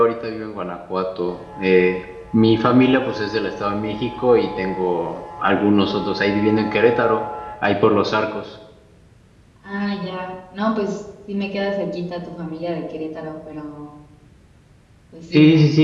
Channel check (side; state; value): both; identical; correlation 1.00